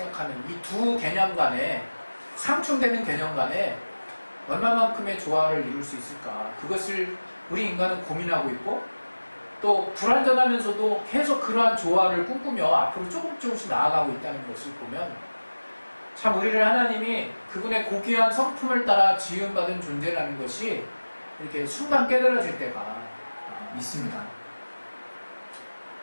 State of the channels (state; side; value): inverted; both; correlation -1.00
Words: 이 두 개념 간에 상충되는 개념 간에 얼마만큼의 조화를 이룰 수 있을까. 그것을 우리 인간은 고민하고 있고 또 불완전하면서도 계속 그러한 조화를 꿈꾸며 앞으로 조금씩 나아가고 있다는 것을 보면 참 우리를 하나님이 그분의 고귀한 성품을 따라 지음받은 존재라는 것이 이렇게 순간 깨달아질 때가 있습니다.